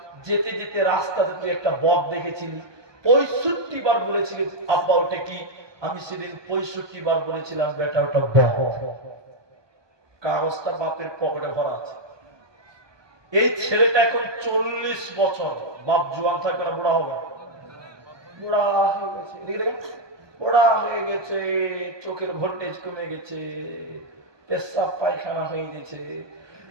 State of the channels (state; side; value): late; left; 1.2 ms